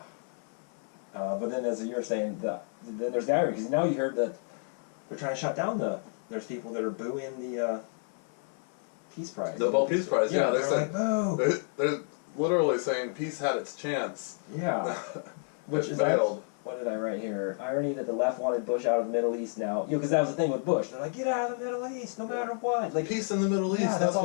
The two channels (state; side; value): silent; right; 58 dB below the other